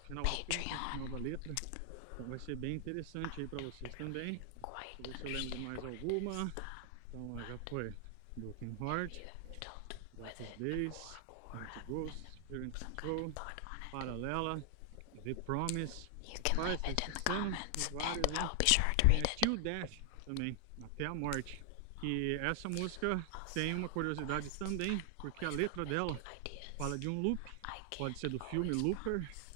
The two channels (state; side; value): different; both; correlation 0.00